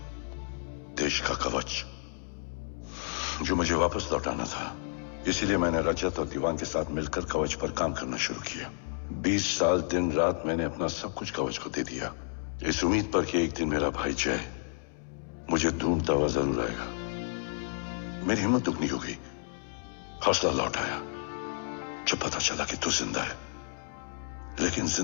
देश का कवच जो मुझे वापस लौटाना था। इसीलिए मैंने रजत और दीवान के साथ मिलकर कवच पर काम करना शुरू किया। 20 साल दिन रात मैंने अपना सब कुछ कवच को दे दिया, इस उम्मीद पर कि एक दिन मेरा भाई जय मुझे ढूंढता हुआ जरूर आएगा। मेरी हिम्मत दुगनी हो गई, हौसला लौट आया जब पता चला कि तू जिंदा है। लेकिन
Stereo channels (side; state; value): right; silent; 57 dB below the other